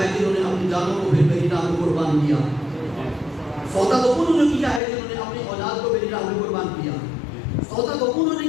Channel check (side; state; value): right; drops out; at 4.8 s